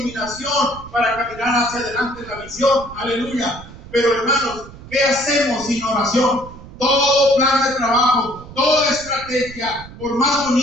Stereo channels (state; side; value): noise; right; rumble, 17 dB below the sound